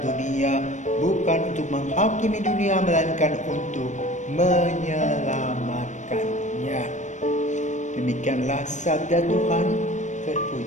dunia, bukan untuk menghakimi dunia, melainkan untuk menyelamatkannya." Demikianlah sabda Tuhan.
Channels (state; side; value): late; right; 0.35 ms